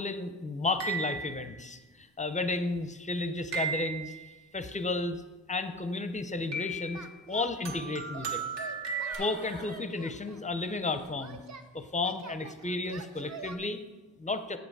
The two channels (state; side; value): normal; both; correlation 0.34